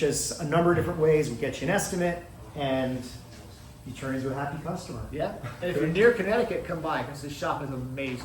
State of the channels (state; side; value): identical; both; correlation 1.00